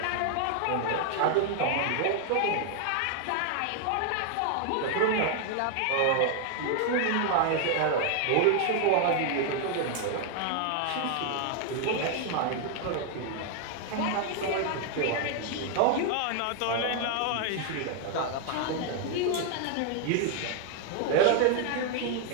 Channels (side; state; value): both; different; correlation 0.00